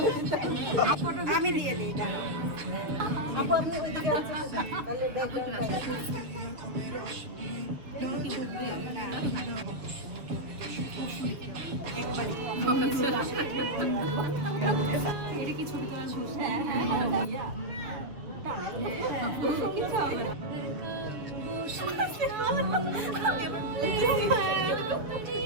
আমি দিয়ে দিই, দাঁড়াও। আপু আপনি ওইদিকে আসেন। আপু একটু কাছে আসেন। কি বুঝবে না এটা কি ছবি তোলা শুরু? হ্যাঁ হ্যাঁ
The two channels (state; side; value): late; left; 6.9 ms